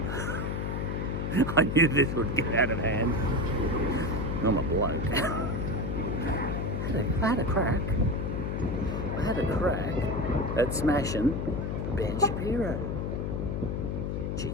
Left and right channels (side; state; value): left; noise; hum, 1 dB below the sound